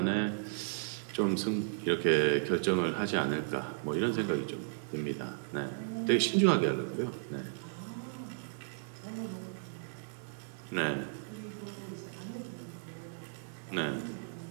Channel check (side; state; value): left; silent; 55 dB below the other